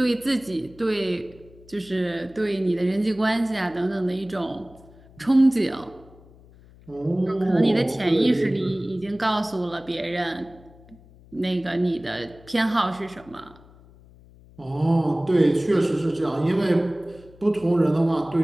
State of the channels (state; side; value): noise; left; hum, 24 dB below the sound